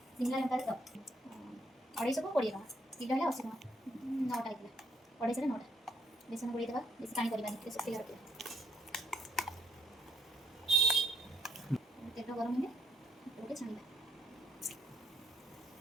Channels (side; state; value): both; normal; correlation 0.72